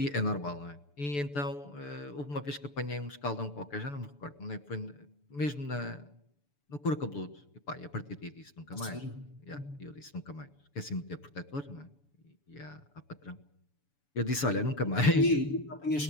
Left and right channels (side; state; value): right; late; 6.9 ms